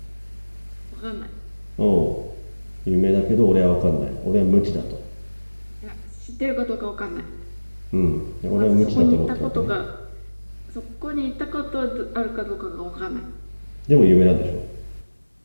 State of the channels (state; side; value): inverted; both; correlation -1.00